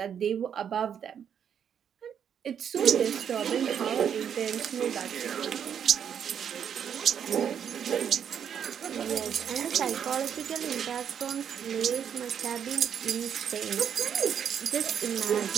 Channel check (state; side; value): quieter; left; 8.3 dB